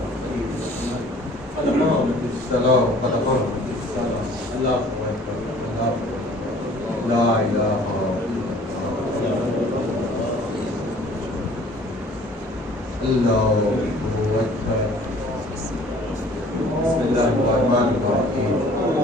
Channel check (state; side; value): normal; both; correlation 0.52